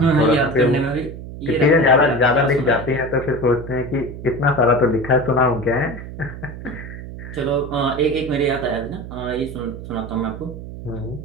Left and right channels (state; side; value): noise; right; hum, 11 dB below the sound